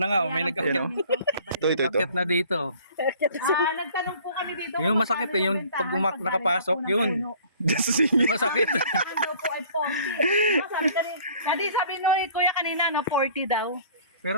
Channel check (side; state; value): both; inverted; correlation -0.52